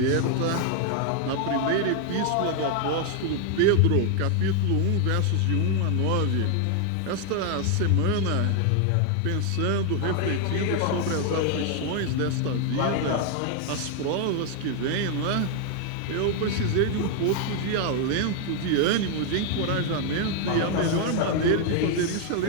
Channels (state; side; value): different; both; correlation 0.00